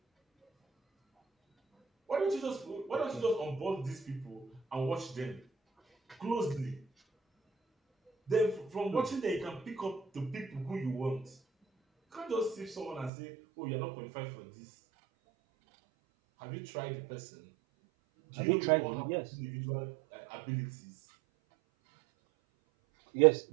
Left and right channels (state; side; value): drops out; left; at 13.1 s